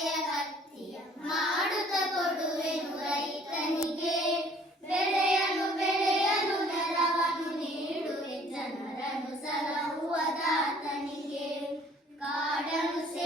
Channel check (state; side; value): normal; both; correlation 0.56